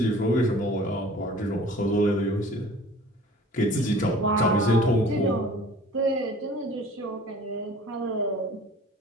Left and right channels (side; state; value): both; normal; correlation 0.47